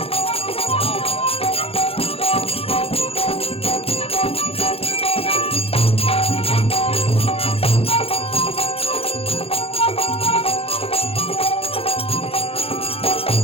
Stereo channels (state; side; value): late; right; 0.28 ms